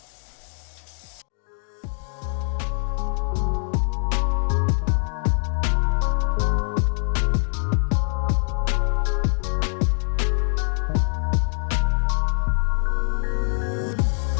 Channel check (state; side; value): silent; right; 63 dB below the other